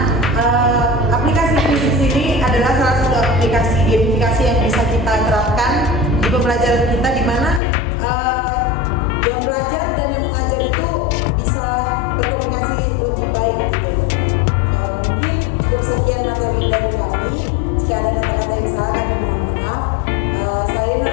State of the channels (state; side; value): drops out; right; at 7.6 s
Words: aplikasi kuisis ini adalah salah satu aplikasi gamifikasi yang bisa kita terapkan di pembelajaran kita, di mana yang belajar dan yang mengajar itu bisa berkomunikasi lebih baik gitu. Mungkin untuk sekian materi dari kami, jika ada kata-kata yang salah kami mohon maaf. Saya